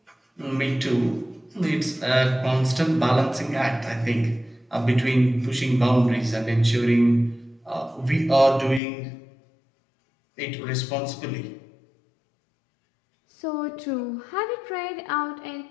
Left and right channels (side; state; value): right; drops out; at 8.8 s